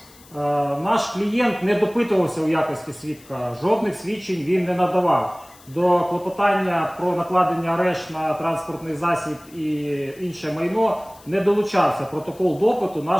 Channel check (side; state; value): left; noise; hiss, 24 dB below the sound